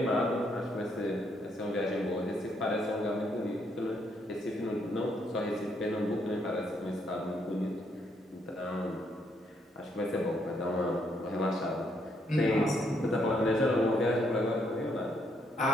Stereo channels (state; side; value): normal; both; correlation 0.73